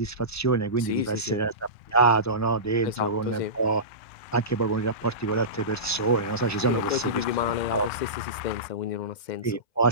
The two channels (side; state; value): right; late; 2.1 ms